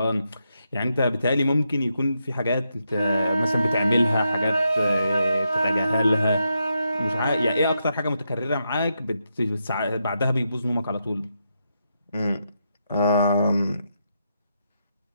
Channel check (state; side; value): inverted; both; correlation -0.83